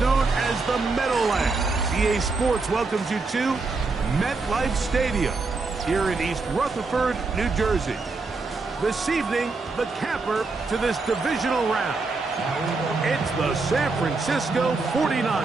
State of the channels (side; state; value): left; quieter; 3.9 dB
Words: as the Meadowlands, EA Sports welcomes you to MetLife Stadium here in East Rutherford, New Jersey. This evening, the camper to this divisional round. It's the San Francisco